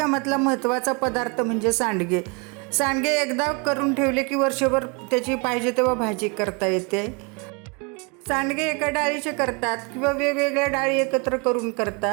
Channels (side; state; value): left; quieter; 31.8 dB